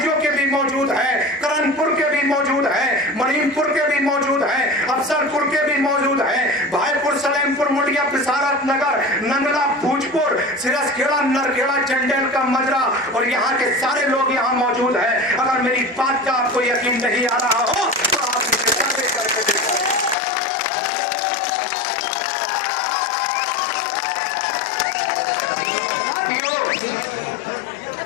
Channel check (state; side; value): drops out; right; at 20.2 s